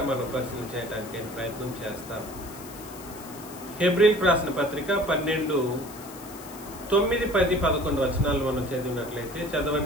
మనం పరిశీలన చేయడానికి అయిన ప్రయత్నం చేస్తాం. హెబ్రీలకు రాసిన పత్రిక 12, 9, 10, 11 వచనాలు మనం చదివినట్లయితే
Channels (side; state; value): left; noise; hiss, 17 dB below the sound